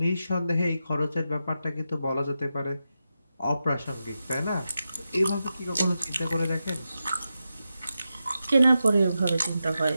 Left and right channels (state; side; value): inverted; both; correlation -0.89